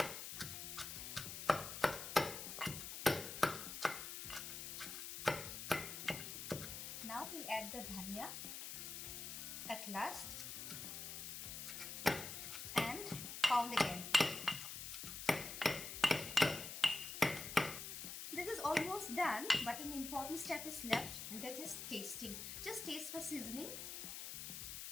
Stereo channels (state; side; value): noise; left; hiss, 7 dB below the sound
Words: Now we'll add the dhania at last and pound again. This is almost done, but an important step is left, and that is tasting. Just taste for seasoning.